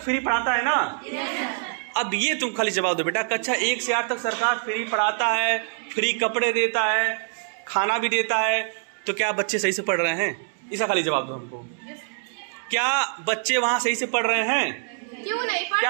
फ्री पढ़ाता है ना। अब ये तुम खाली जवाब दो बेटा, कक्षा 1 से 8 तक सरकार फ्री पढ़ाता है, फ्री कपड़े देता है, खाना भी देता है, तो क्या बच्चे सही से पढ़ रहे हैं? इसका खाली जवाब दो हमको। क्या बच्चे वहां सही से पढ़ रहे हैं? क्यों नहीं पढ़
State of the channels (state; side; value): silent; left; 62 dB below the other